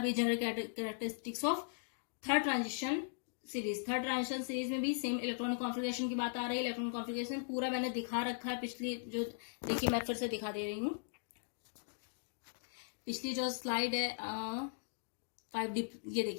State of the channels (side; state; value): right; silent; digital silence